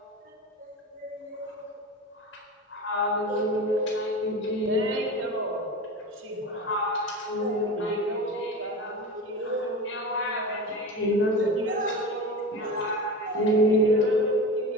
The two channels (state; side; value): normal; both; correlation 0.29